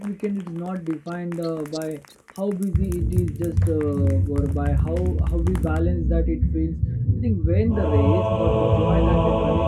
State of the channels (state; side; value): identical; both; correlation 1.00